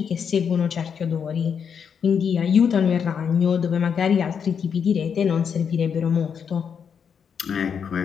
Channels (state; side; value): quieter; right; 7.1 dB